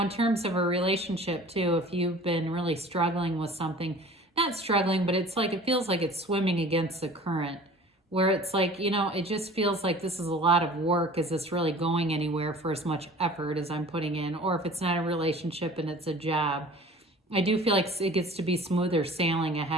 in terms of a relationship too, if you've been really struggling with something, not struggling, but it's like, it feels like it's swimming against the current, where it's like, it just feels like this is a lot of work. Is this really going anywhere for as much effort as I'm putting in? Or if it's not a relationship and it's a job, I do feel like it gets to be smoother sailing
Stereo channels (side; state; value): both; normal; correlation 0.45